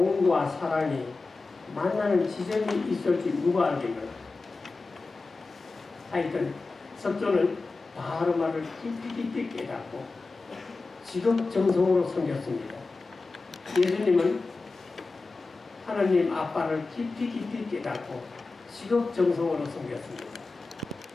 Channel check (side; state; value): right; quieter; 3.8 dB